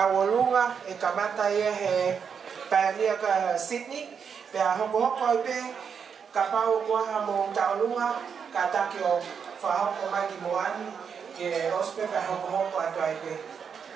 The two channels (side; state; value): left; quieter; 6.7 dB